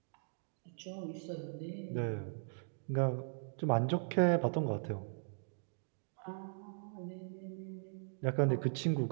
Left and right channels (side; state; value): left; silent; digital silence